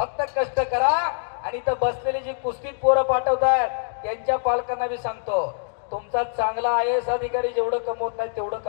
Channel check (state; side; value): silent; right; digital silence